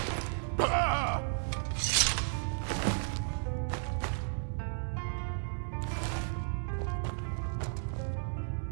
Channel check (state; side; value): silent; left; 55 dB below the other